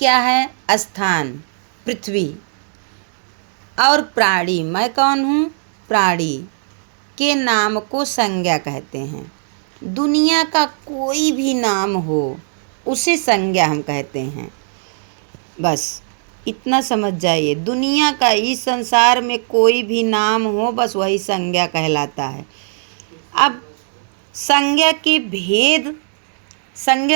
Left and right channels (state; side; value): silent; left; digital silence